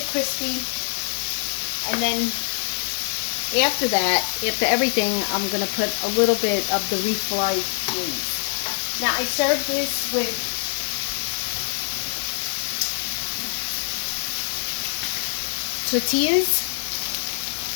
crispy. And then after that, after everything, I'm going to put a little bit of the refried cheese. Now I serve this with tortillas.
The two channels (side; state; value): right; silent; digital silence